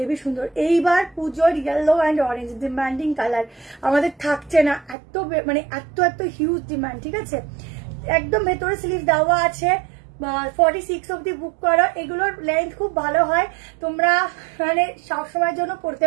সুন্দর। এইবার পুজোর yellow and orange demanding colour আমাদের থাকছে না, এত মানে এত হিউজ ডিমান্ড, ঠিক আছে। একদম ভেতরে স্লিভ দেওয়া আছে, 46 অব্দি বুক করো। এগুলোর লেন্থ খুব ভালো হয়, তোমরা মানে সবসময়ের জন্য পড়তে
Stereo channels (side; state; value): left; drops out; at 5.0 s